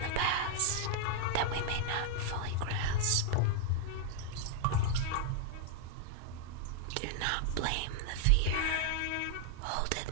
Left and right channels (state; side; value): different; both; correlation 0.00